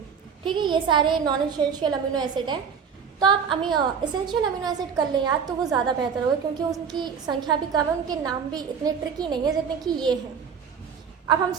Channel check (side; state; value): left; quieter; 6.7 dB